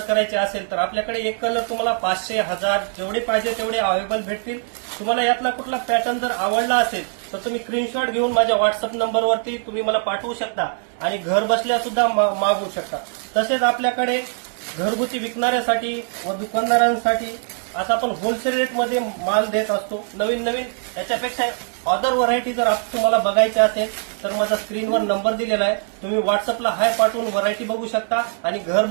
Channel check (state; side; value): silent; left; 64 dB below the other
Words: असेल तर आपल्याकडे एक कलर तुम्हाला 500, 1000 जेवढे पाहिजे तेवढे अवेलेबल भेटतील। तुम्हाला यातला कुठला पॅटर्न जर आवडला असेल तर तुम्ही स्क्रीनशॉट घेऊन माझ्या व्हॉट्सअप नंबरवरती तुम्ही मला पाठवू शकता आणि घर बसल्या सुद्धा मागवू शकता। तसेच आपल्याकडे घरगुती विकणाऱ्यासाठी व दुकानदारांसाठी आता आपण होलसेल रेटमध्ये माल देत असतो। नवीन नवीन याच्यापेक्षा अदर व्हरायटी जर तुम्हाला बघायची असेल तर माझा स्क्रीनवर नंबर दिलेला आहे, तुम्ही व्हॉट्सअपला हाय पाठवून व्हरायटी बघू शकता आणि घर